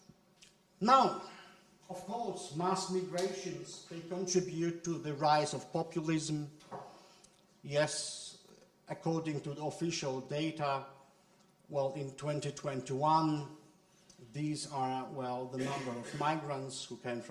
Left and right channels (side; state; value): both; identical; correlation 1.00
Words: Now, of course, mass migrations, they contribute to the rise of populism. Yes, according to the official data, well, in 2021, these are, well, the number of migrants who came